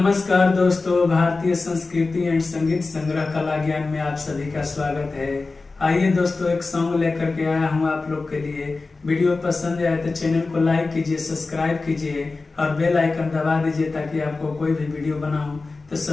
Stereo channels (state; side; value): quieter; right; 3.7 dB